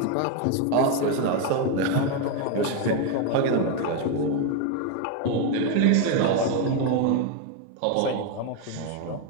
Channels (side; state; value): both; different; correlation 0.02